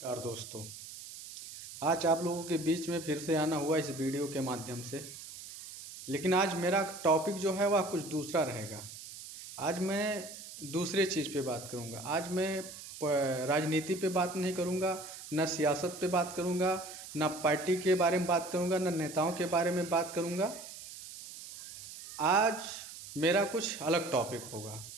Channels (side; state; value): right; noise; hiss, 12 dB below the sound